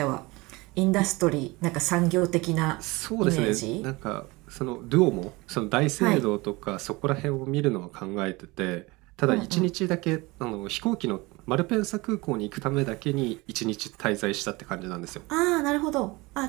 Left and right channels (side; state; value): left; quieter; 23.3 dB